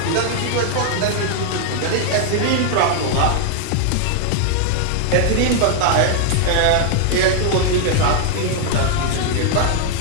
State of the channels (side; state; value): both; different; correlation 0.00